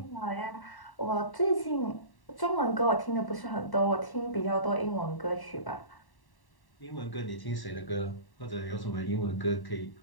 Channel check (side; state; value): right; late; 1.1 ms